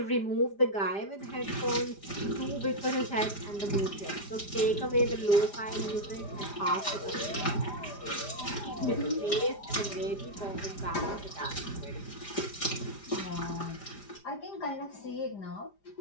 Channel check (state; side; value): late; right; 5.0 ms